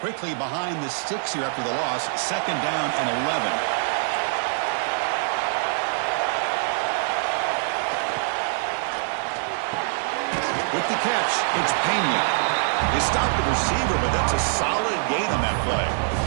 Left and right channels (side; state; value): left; silent; digital silence